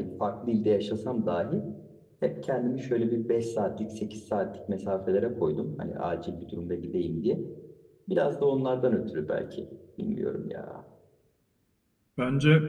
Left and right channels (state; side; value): identical; both; correlation 1.00